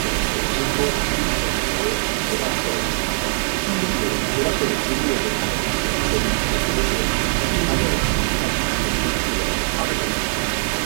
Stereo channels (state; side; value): silent; left; 65 dB below the other